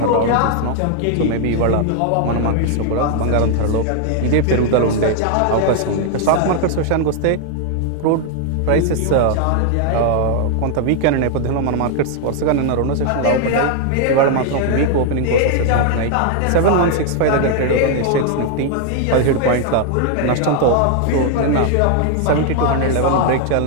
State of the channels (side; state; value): both; different; correlation 0.00